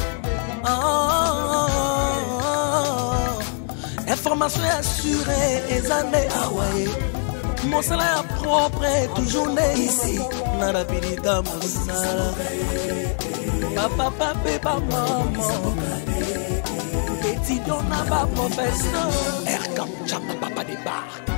Information assurée et années Hawaii. Mon salaire propre est toujours né ici. Narabilita Moussala. Papa, papa, maman. Étudiant n'a pas professeur. Air comme Chama Papa débarque.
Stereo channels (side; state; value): right; silent; 56 dB below the other